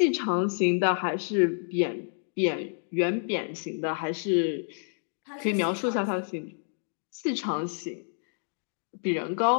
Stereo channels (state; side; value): silent; right; digital silence